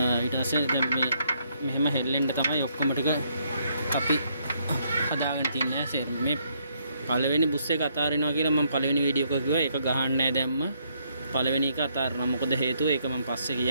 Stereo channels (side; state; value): both; inverted; correlation -0.72